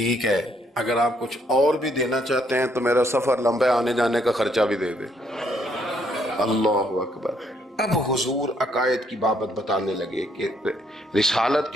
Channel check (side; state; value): both; normal; correlation 0.70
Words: ہے اگر آپ کچھ اور بھی دینا چاہتے ہیں تو میرا سفر لمبا آنے جانے کا خرچہ بھی دے دے. اللہ اکبر. اب حضور عقائد کی بابت بتانے لگے کہ رسالت